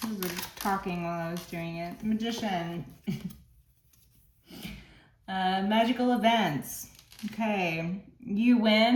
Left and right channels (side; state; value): both; identical; correlation 1.00